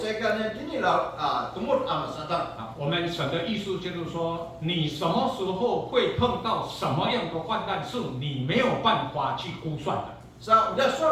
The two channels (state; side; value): identical; both; correlation 1.00